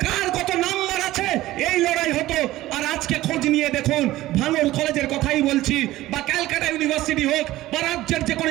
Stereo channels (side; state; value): left; quieter; 16.2 dB